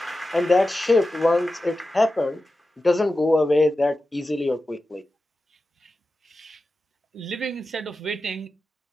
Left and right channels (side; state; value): both; normal; correlation 0.92